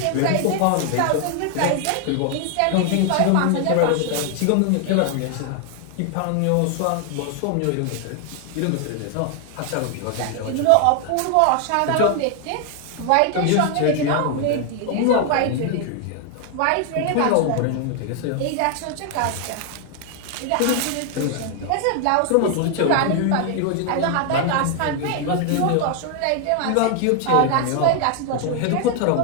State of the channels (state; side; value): different; both; correlation 0.00